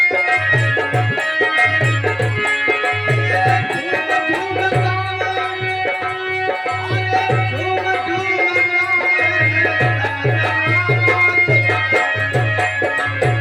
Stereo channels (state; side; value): identical; both; correlation 1.00